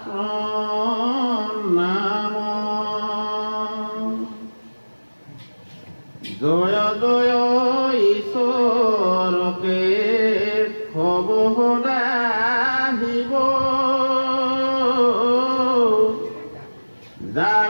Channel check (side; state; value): both; inverted; correlation -1.00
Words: জয় ঈশ্বৰকে হব সদাহিব